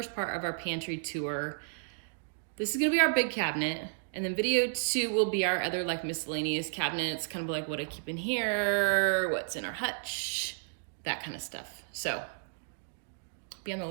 part of our pantry tour. This is gonna be our big cabinet, and then video 2 will be our other like miscellaneous cabinets, kind of like what I keep in here, what's in our hutch, that kind of stuff. So be on the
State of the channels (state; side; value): silent; left; digital silence